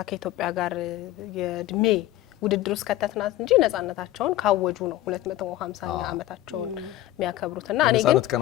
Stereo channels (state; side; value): quieter; right; 14.6 dB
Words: ከኢትዮጵያ ጋር የእድሜ ውድድር ውስጥ ከተትናት እንጂ ነጻነታቸውን ካወጁ ነው 250ኛ ዓመታቸውን የሚያከብሩትና እኔ ግን